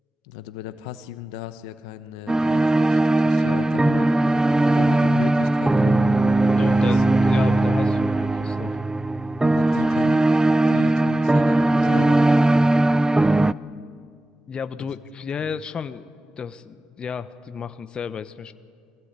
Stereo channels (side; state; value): both; normal; correlation 0.95